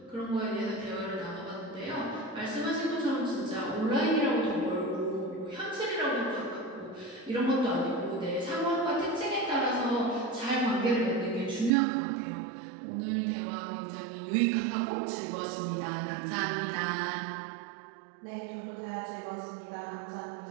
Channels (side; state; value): left; drops out; at 11.7 s